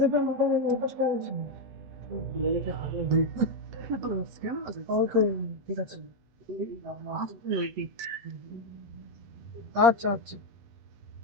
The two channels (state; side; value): late; left; 8.1 ms